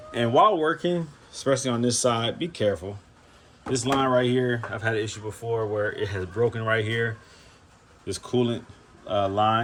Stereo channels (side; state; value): both; identical; correlation 1.00